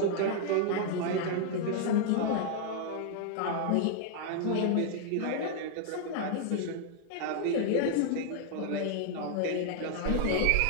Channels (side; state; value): both; different; correlation -0.01